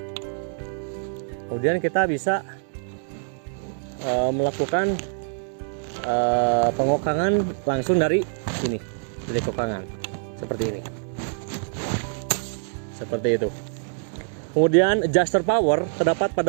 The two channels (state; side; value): silent; left; digital silence